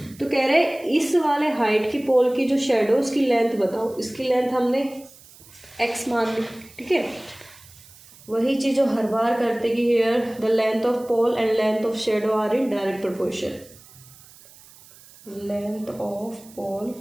तो कह रहे इस वाले हाइट की पोल की जो शेडो उसकी लेंथ बताओ। इसकी लेंथ हमने x मान ली। ठीक है, वही चीज़ जो हर बार करते कि here the length of pole and length of shadow are in direct proportion. Length of pole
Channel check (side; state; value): right; noise; hiss, 23 dB below the sound